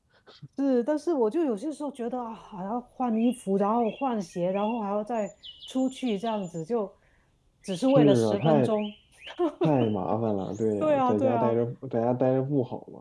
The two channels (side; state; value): both; identical; correlation 1.00